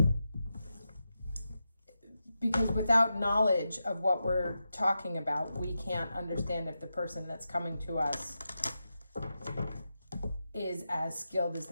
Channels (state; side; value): inverted; both; correlation -0.89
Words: Because without knowledge of what we're talking about, we can't understand if the person that's coming to us is as skilled as